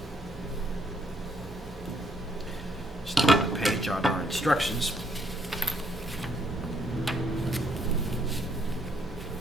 start a page on our instructions.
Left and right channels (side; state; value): both; normal; correlation 0.70